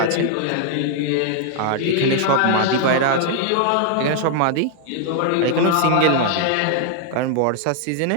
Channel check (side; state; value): both; different; correlation 0.00